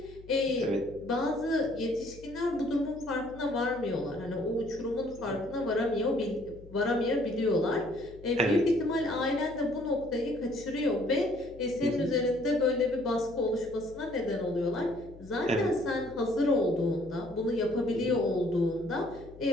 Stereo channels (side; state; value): left; noise; hum, 20 dB below the sound